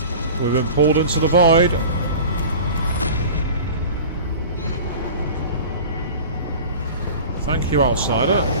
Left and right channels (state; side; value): inverted; both; correlation -0.38